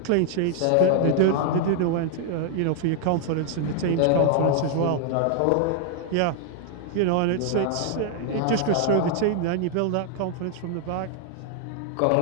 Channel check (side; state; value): both; different; correlation 0.00